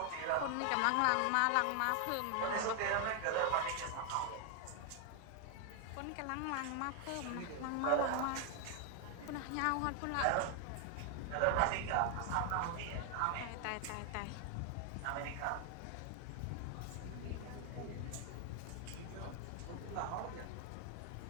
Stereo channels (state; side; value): different; both; correlation 0.01